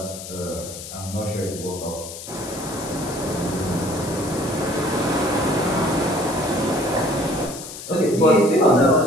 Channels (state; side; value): noise; left; hiss, 11 dB below the sound